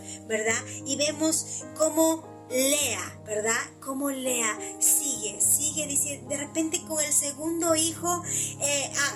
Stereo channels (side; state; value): both; identical; correlation 1.00